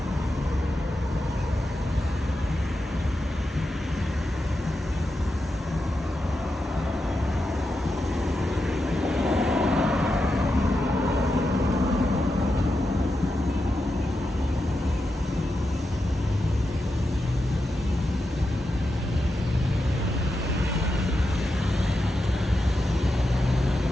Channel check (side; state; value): both; normal; correlation 0.88